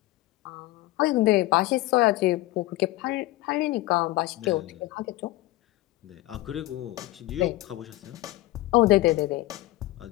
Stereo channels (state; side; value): quieter; right; 18.1 dB